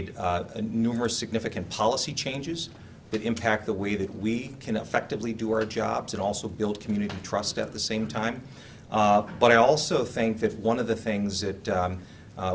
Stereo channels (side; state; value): both; identical; correlation 1.00